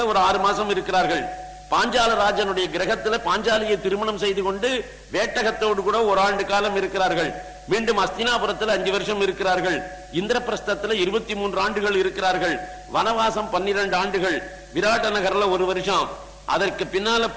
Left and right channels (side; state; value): both; identical; correlation 1.00